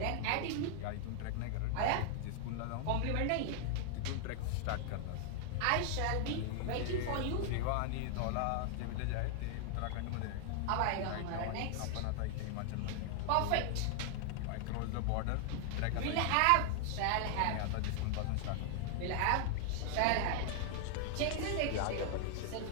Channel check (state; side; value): different; both; correlation 0.00